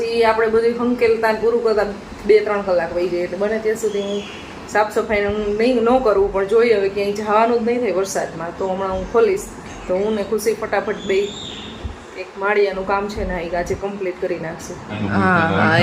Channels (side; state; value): both; identical; correlation 1.00